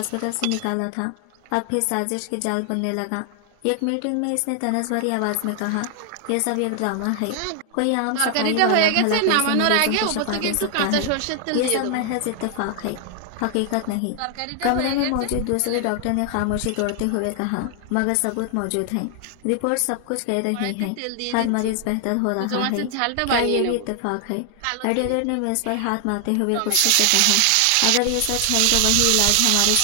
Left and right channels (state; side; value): different; both; correlation 0.00